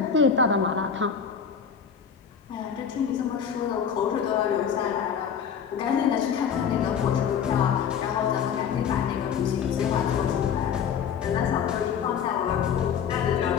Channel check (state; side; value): quieter; right; 7.4 dB